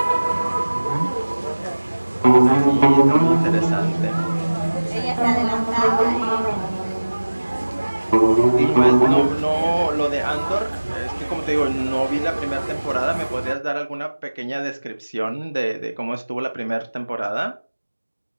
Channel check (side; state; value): both; inverted; correlation -1.00